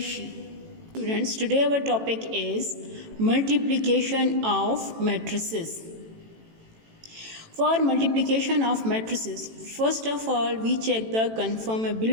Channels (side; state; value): left; late; 18 ms